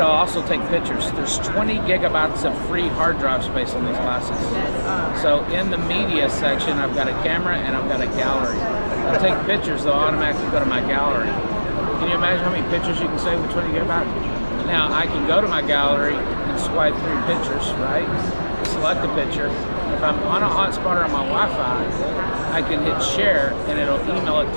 also take pictures. There's 20 gigabytes of free hard drive space on these glasses. So in the media section, I've got a camera and I've got a gallery. I take pictures, they'll automatically go to my gallery. Can you imagine how many pictures you can save with 20 gigabytes? Now I can go to my gallery and swipe through pictures, right? Select a picture. If I'm on a hotspot or on my Wi-Fi, I can hit share and it'll email it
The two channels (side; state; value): both; inverted; correlation -1.00